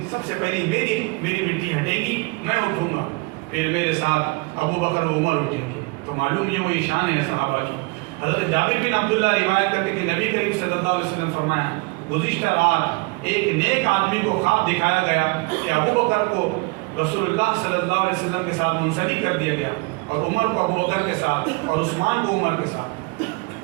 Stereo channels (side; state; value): left; quieter; 27.7 dB